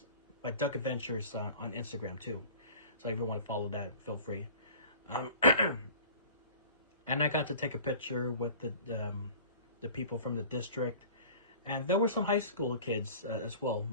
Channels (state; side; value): inverted; both; correlation -0.43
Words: on Instagram too. So if you want to follow that, feel free. Um, and I got to take a picture with the people from the district, and there were some high school kids as well,